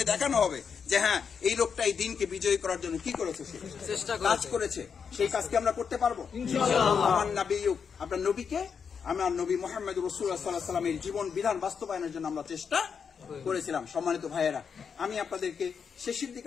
দেখানো হবে যে হ্যাঁ, এই লোকটা এই দিনকে বিজয়ী করার জন্য কি করেছে, সে কাজ করেছে। সেই কাজকে আমরা করতে পারবো ইনশাআল্লাহ। আমার নবী, আপনার নবীকে, আমার নবী মুহাম্মদ রাসূলুল্লাহ সাল্লাল্লাহু আলাইহি ওয়াসাল্লামের জীবন বিধান বাস্তবায়নের জন্য আমরা চেষ্টা করেছিলাম। সম্মানিত ভাইয়েরা, আমি আপনাদেরকে শেষের দিকে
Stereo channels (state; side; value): quieter; right; 6.4 dB